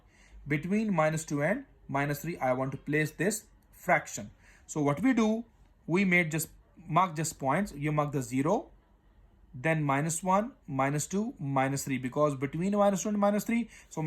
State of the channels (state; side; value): identical; both; correlation 1.00